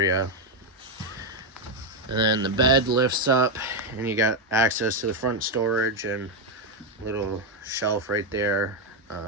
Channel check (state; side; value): normal; both; correlation 0.04